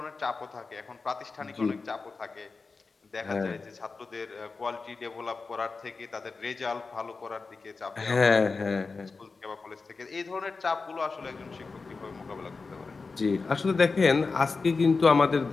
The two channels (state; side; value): quieter; right; 4.3 dB